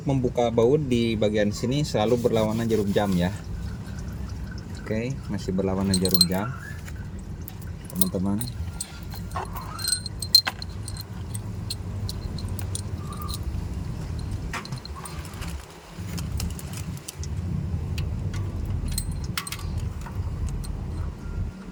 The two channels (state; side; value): identical; both; correlation 1.00